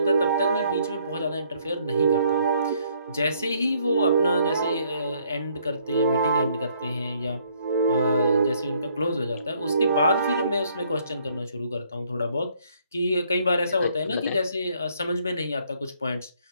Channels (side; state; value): both; inverted; correlation -0.66